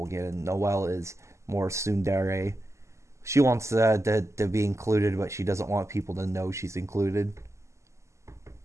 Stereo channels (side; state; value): left; late; 0.14 ms